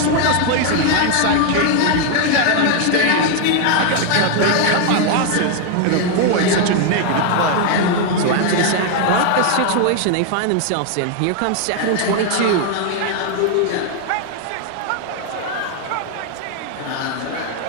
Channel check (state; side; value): different; both; correlation 0.00